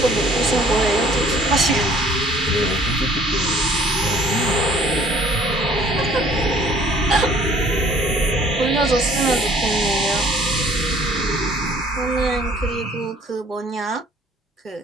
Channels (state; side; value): normal; both; correlation 0.56